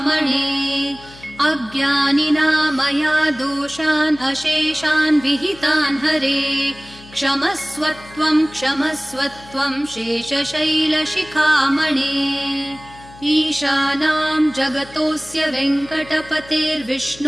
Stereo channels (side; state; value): left; noise; hum, 21 dB below the sound